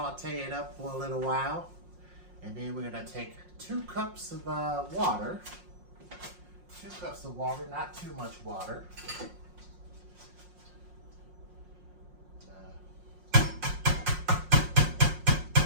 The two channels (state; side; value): late; left; 5.6 ms